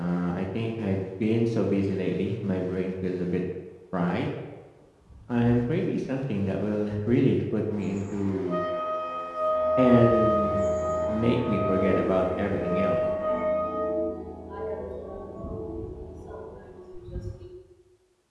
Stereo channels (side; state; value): both; identical; correlation 1.00